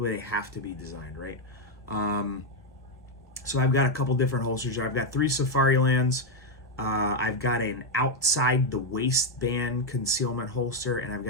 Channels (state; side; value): normal; both; correlation 0.04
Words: designed, right? So I've got a couple different holsters here. I've got 3 Safarilands. I've got an outside the waistband concealment holster, and I've